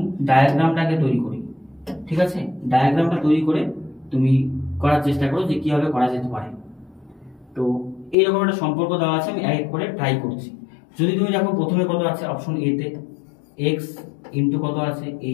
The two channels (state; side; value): drops out; right; at 8.2 s